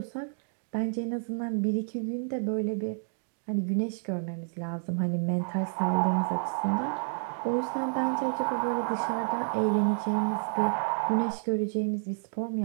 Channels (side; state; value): left; silent; 58 dB below the other